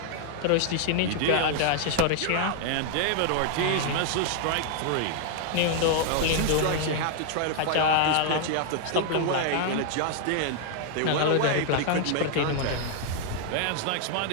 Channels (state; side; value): different; both; correlation 0.00